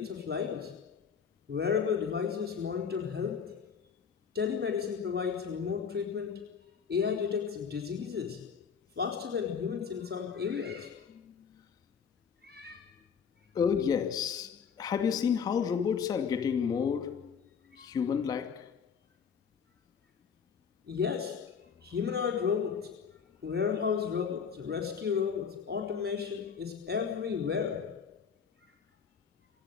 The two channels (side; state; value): right; quieter; 6.7 dB